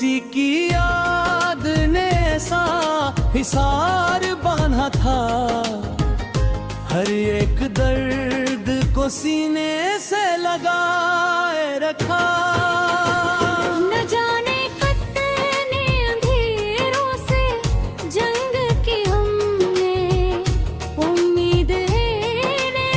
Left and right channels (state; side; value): identical; both; correlation 1.00